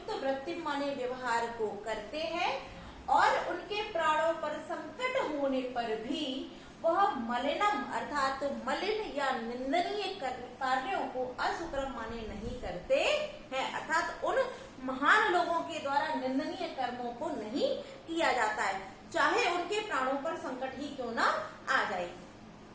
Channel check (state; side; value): identical; both; correlation 1.00